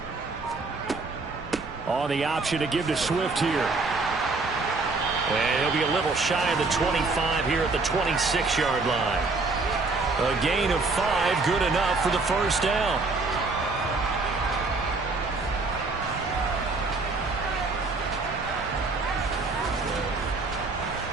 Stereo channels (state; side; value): quieter; left; 3.7 dB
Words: On the option to give to Swift here. And he'll be a little shy of the 25 here at the 26-yard line. A gain of 5, good enough for the first down.